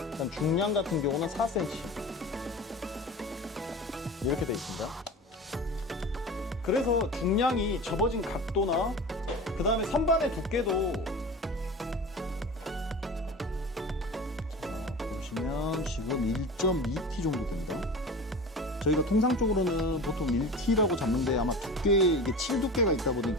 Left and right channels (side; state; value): both; normal; correlation 0.34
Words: 그다음 중량 같은 경우는 4cm. 이렇게 되어 있습니다. 그래서 중량이 접어진 각도나 그 다음에 선반의 두께도, 보시면 지금 1.2T 정도 됩니다. 저희가 통상적으로는 보통 1T라고 잡는데 아마 두께, 이게 7 두께가 있다